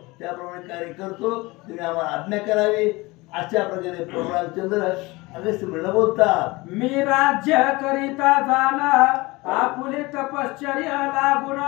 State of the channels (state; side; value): quieter; right; 22.7 dB